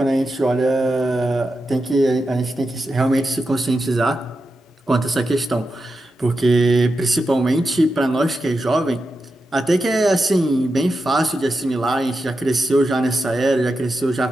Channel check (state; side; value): normal; both; correlation 0.89